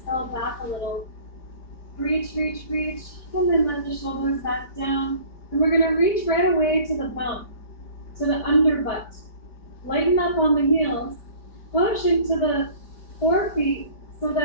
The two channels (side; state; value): right; late; 4.5 ms